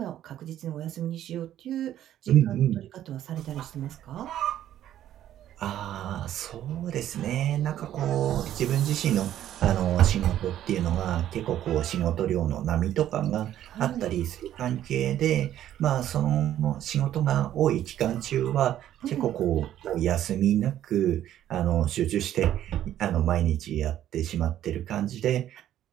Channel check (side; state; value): left; quieter; 11.8 dB